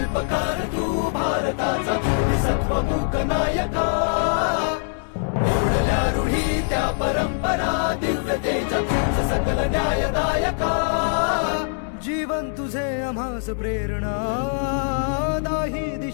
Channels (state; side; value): silent; right; digital silence